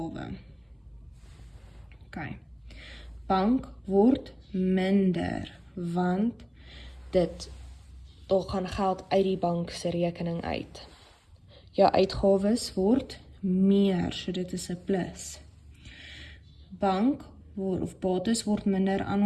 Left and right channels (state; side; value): identical; both; correlation 1.00